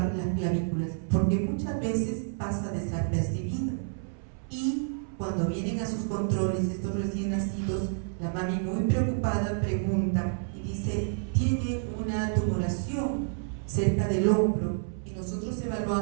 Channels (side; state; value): left; silent; 58 dB below the other